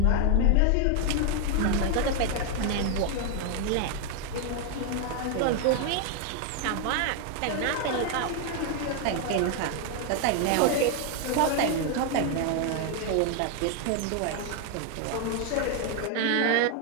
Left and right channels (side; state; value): both; different; correlation 0.00